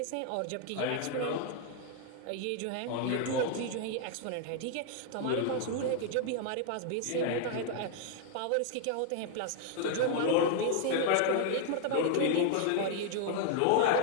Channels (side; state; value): both; different; correlation 0.00